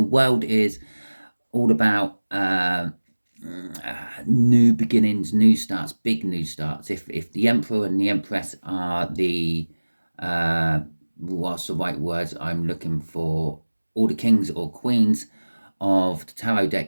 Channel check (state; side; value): inverted; both; correlation -1.00